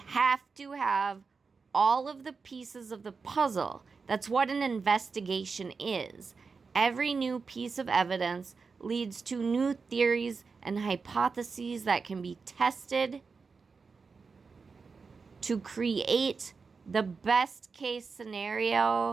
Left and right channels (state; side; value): quieter; left; 4.9 dB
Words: to have all of the pieces of the puzzle. That's what an investigation is. Every new piece of evidence leads to new theories and hypotheses that can be tested to create the best case